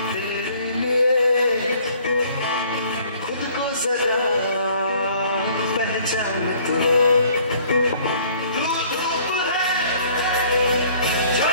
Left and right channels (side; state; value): both; inverted; correlation -0.57